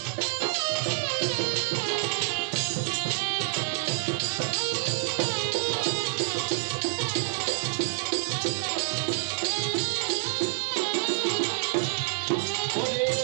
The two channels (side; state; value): left; silent; digital silence